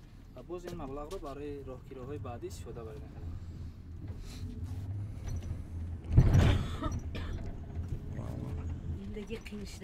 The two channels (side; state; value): both; identical; correlation 1.00